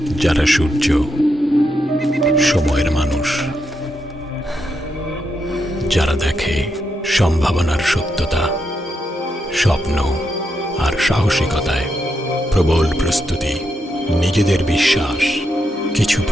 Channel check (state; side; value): normal; both; correlation 0.82